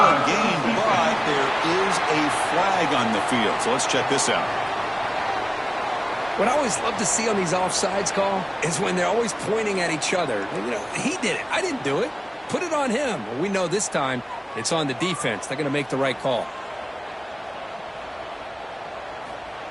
gain, but there is a flag on the field. So let's check this out. What I always love to see on these offsides call is when they're always pointing at each other. You know, he did it. I didn't do it. Put it on him. Well, we know this time it's on the defense. They're going to make the right call.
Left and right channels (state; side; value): identical; both; correlation 1.00